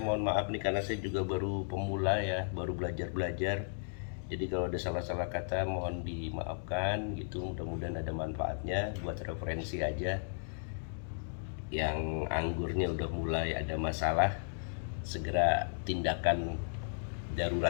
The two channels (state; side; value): silent; right; digital silence